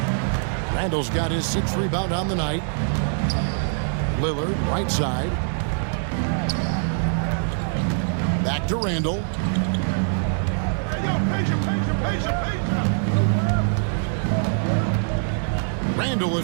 Randle's got his 6th rebound on the night. Lillard, right side. Back to Randle. Randle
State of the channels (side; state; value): left; silent; 63 dB below the other